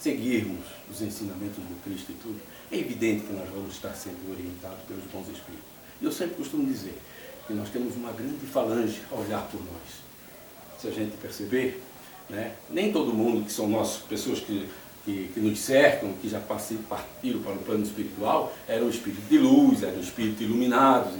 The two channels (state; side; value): identical; both; correlation 1.00